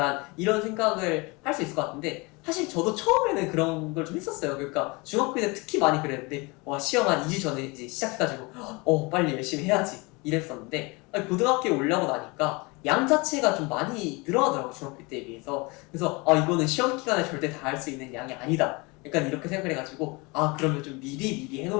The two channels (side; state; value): right; quieter; 26.6 dB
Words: 이런 생각을 할 수 있을 것 같은데 사실 저도 처음에는 그런 걸 좀 했었어요. 그러니까 중학교 때 특히 많이 그랬는데 시험 한 2주 전에 이제 시작해가지고 빨리 열심히 해야지 이랬었는데 고등학교에 올라오고 나니까 양 자체가 좀 많이 늘어나더라고요. 중학교 때에 비해서. 그래서 이거는 시험 기간에 절대 다 할 수 있는 양이 아니다. 약간 이렇게 생각을 해가지고 그러면 좀 미리